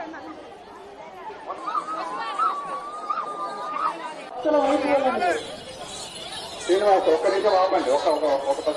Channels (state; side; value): identical; both; correlation 1.00